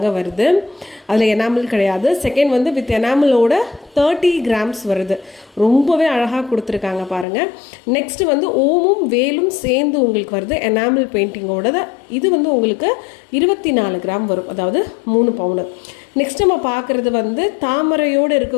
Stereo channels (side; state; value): right; drops out; at 7.2 s